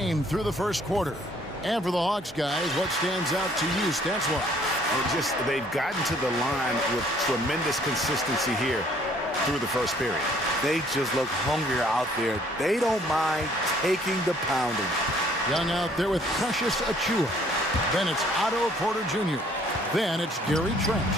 through the first quarter. And for the Hawks guys, what stands out to you stats-wise? They've gotten to the line with tremendous consistency here through the first period. They just look hungrier out there. They don't mind taking the pounding. Young out there with Precious Achua. Then it's Otto Porter Jr. Then it's Gary Trent.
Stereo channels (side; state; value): both; normal; correlation 0.60